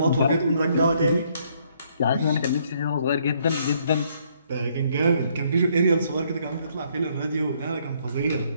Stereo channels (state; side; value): inverted; both; correlation -0.68